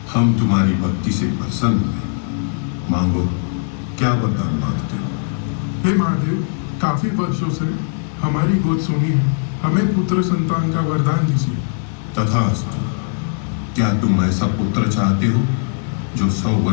हम तुम्हारी भक्ति से प्रसन्न हुए। मांगो, क्या वरदान मांगते हो? हे महादेव, काफी वर्षों से हमारी गोद सुनी है, हमें पुत्र संतान का वरदान दीजिए। तथास्तु। क्या तुम ऐसा पुत्र चाहते हो जो 100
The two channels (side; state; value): right; silent; digital silence